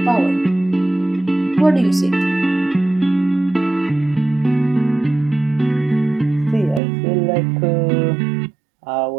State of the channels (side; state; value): left; drops out; at 6.8 s